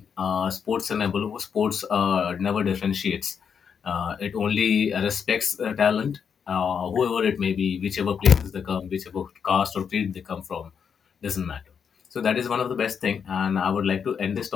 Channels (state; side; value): quieter; right; 7.0 dB